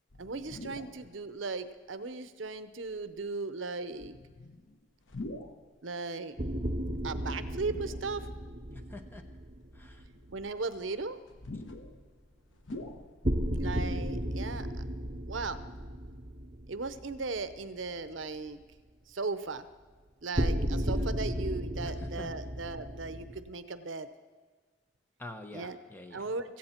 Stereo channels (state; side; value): normal; both; correlation 0.44